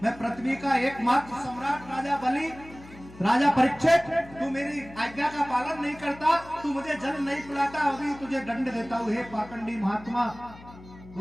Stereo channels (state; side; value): noise; left; hum, 19 dB below the sound